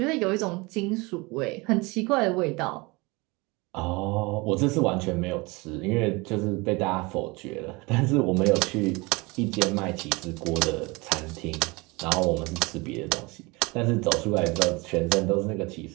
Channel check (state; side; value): quieter; left; 25.3 dB